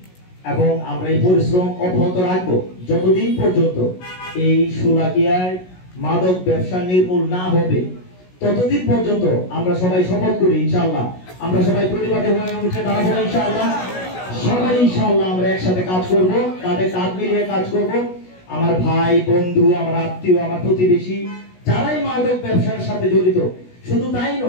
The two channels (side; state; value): right; late; 16 ms